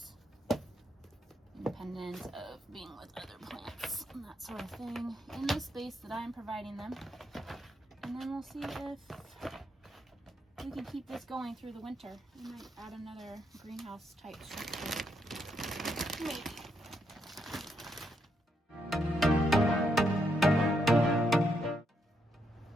independent of being with other plants and that sort of thing in the space that I'm providing them. And then we'll see if we can keep this going through the winter. We might add another greenhouse type structure. Maybe.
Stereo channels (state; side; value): normal; both; correlation 0.79